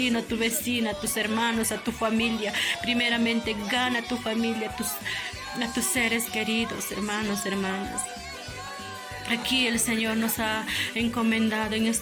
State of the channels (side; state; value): both; identical; correlation 1.00